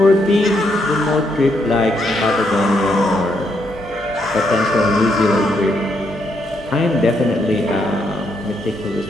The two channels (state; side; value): normal; both; correlation 0.77